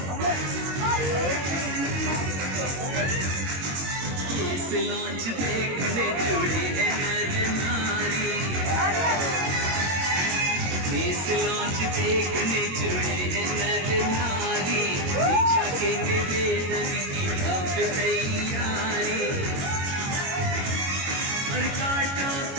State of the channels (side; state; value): left; late; 22 ms